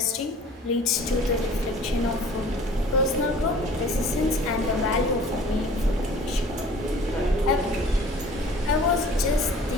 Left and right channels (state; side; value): normal; both; correlation 0.48